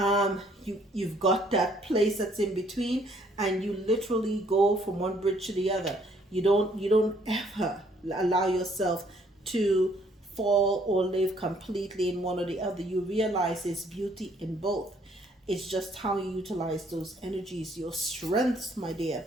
You've got that place that's in between, and you literally go from one bridge to the other. You don't ever allow yourself to fall or live completely in one or the other. You realize there's beauty in both. It's just how you utilize those energies, your strengths, my dear.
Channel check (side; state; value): both; normal; correlation 0.64